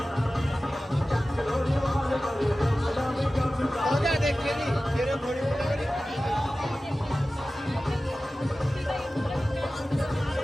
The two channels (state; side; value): normal; both; correlation 0.96